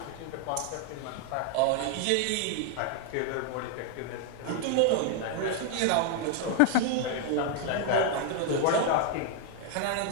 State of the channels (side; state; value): both; different; correlation 0.00